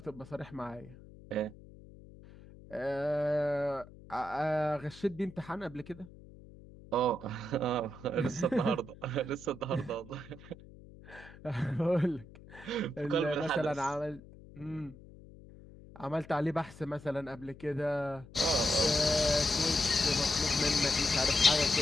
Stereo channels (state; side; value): noise; left; hum, 19 dB below the sound